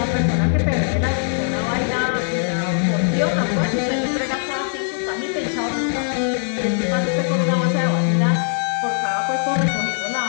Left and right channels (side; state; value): right; silent; digital silence